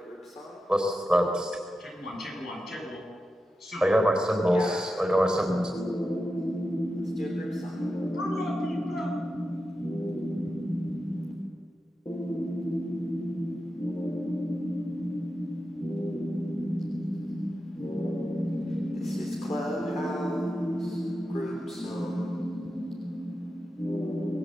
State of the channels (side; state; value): both; normal; correlation 0.90